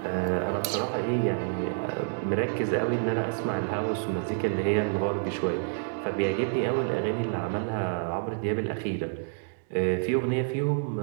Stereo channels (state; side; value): silent; left; digital silence